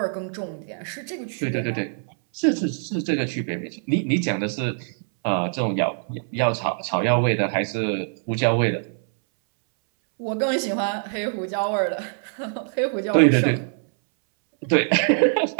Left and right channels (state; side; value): silent; left; 63 dB below the other